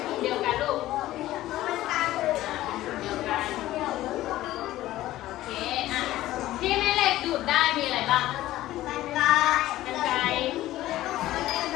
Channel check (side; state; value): right; quieter; 15.2 dB